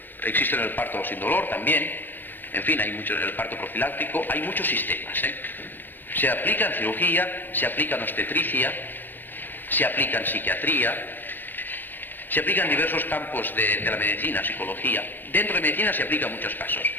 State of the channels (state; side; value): late; right; 0.090 ms